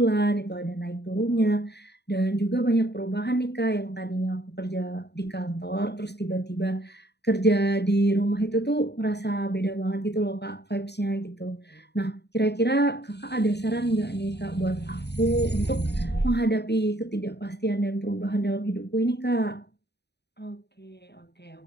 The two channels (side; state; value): right; late; 0.49 ms